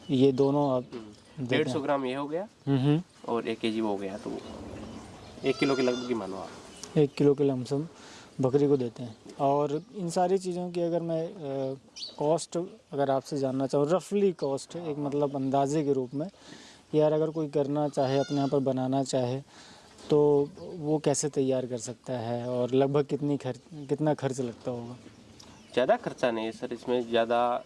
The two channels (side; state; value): both; identical; correlation 1.00